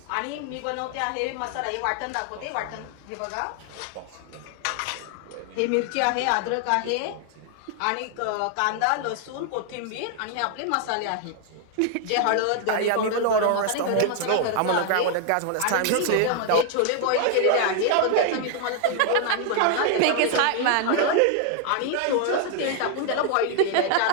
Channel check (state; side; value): different; both; correlation 0.00